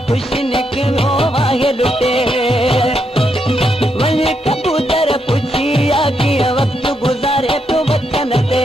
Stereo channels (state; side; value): normal; both; correlation 0.80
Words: ख़ुशि निकिरो आहे लुटे। वञी कबूतर पुछिया कीअं वक्त गुज़ारे तो वतन ते।